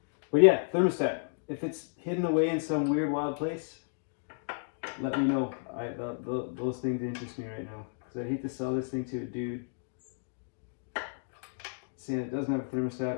But yeah, thermostat. If it's hidden away in some weird wild place, let me know. Those things interest me right now. Because I hate to sell this thing to a dude saying it doesn't have a thermostat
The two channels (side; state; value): right; silent; digital silence